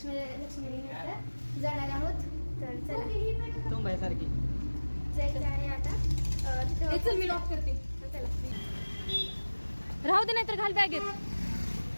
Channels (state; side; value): inverted; both; correlation -1.00